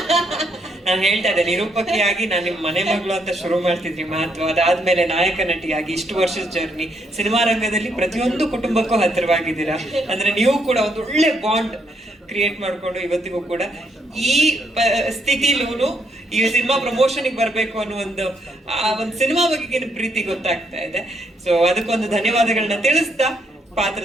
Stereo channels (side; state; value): both; normal; correlation 0.74